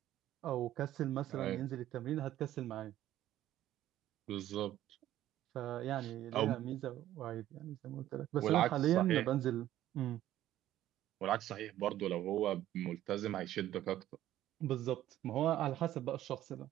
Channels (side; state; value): left; quieter; 13.2 dB